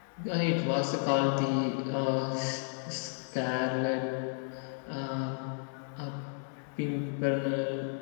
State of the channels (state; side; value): silent; right; 56 dB below the other